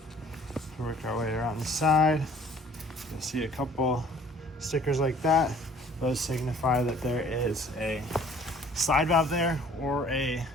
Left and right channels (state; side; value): normal; both; correlation 0.54